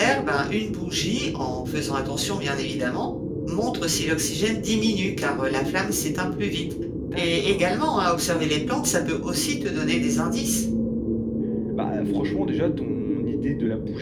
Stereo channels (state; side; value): identical; both; correlation 1.00